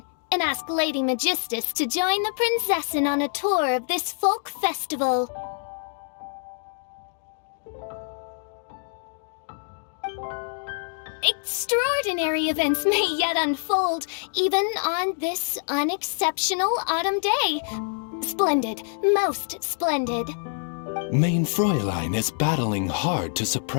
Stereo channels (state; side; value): silent; right; digital silence